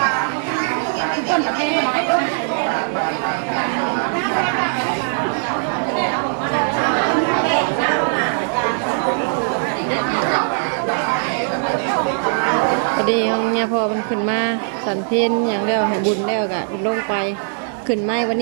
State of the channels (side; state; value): left; silent; 66 dB below the other